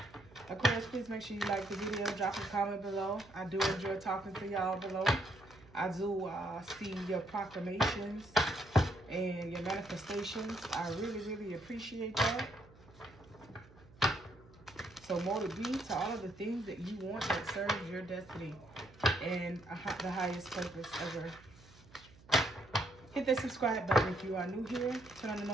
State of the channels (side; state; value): right; noise; hum, 24 dB below the sound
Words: Aquarius, please make sure you like the video, drop a comment below. I do enjoy talking to y'all below. I do see your proclamations and your manifestations. I really, really appreciate that. So more to be to all of the things that you want that serves your destiny and the highest purpose ever. Hit that subscribe button if you are new here. Turn on the